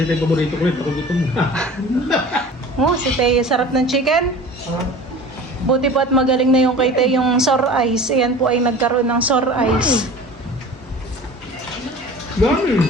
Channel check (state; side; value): normal; both; correlation 0.40